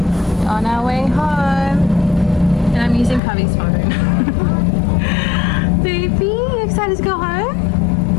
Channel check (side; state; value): right; drops out; at 3.2 s